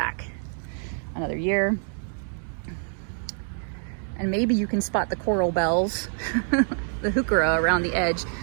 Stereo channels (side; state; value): left; silent; 61 dB below the other